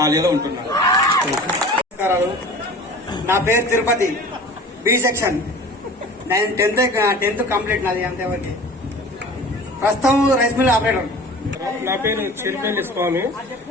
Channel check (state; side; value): normal; both; correlation 0.41